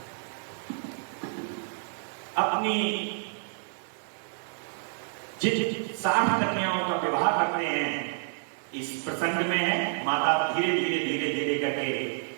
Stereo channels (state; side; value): silent; left; digital silence